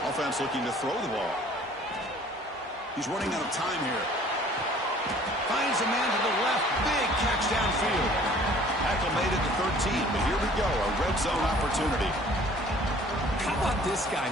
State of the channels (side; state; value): both; normal; correlation 0.53